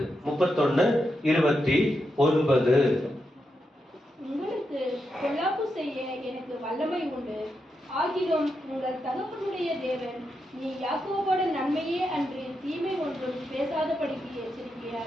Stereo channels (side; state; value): both; normal; correlation 0.85